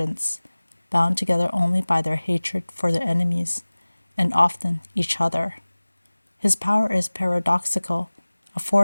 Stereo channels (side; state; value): both; inverted; correlation -1.00